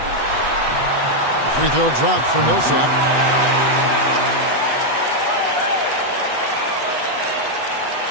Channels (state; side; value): late; left; 8.2 ms